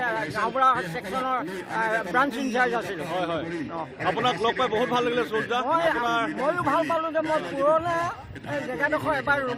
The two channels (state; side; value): identical; both; correlation 1.00